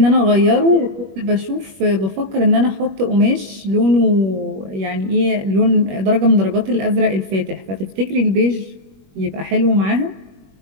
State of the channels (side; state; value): left; late; 21 ms